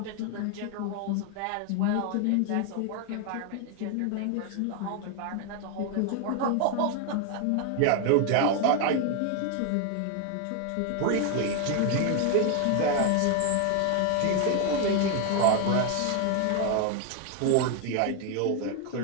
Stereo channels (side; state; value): both; different; correlation 0.01